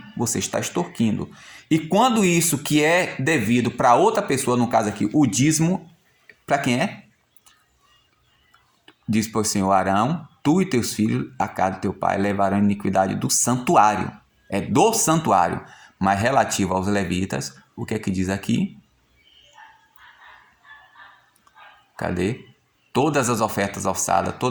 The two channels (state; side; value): identical; both; correlation 1.00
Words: você está extorquindo. E quando isso que é devido para outra pessoa, no caso aqui, o dízimo, para quem é? Diz para o Senhor Arão, tu e teus filhos, a casa de teu pai, levarão a iniquidade do santuário. É do santuário. Mas relativo aos levitas, o que é que diz aqui? Cadê? Todas as ofertas alçadas,